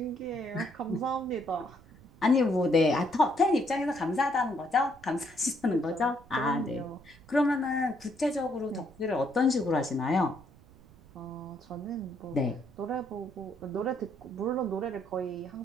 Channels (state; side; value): noise; right; rumble, 23 dB below the sound